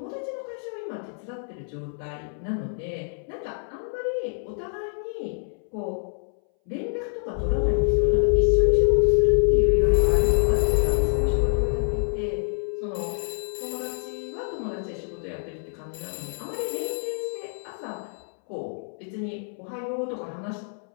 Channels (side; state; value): right; silent; 61 dB below the other